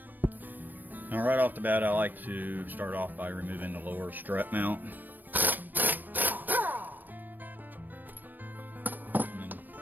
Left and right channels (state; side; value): late; left; 0.090 ms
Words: Now right off the bat, I like to start off by removing the lower strut mount. And